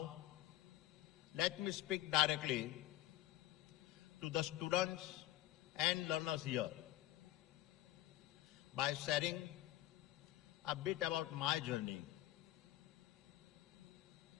let me speak directly to the students and learners here by sharing a bit about my journey.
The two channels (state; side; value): quieter; right; 15.7 dB